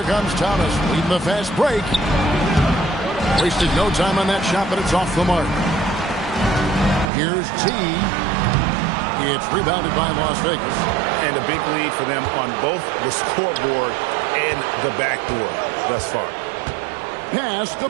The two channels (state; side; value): drops out; left; at 7.1 s